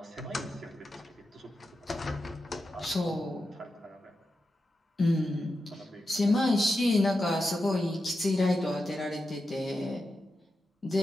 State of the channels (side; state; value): both; normal; correlation 0.89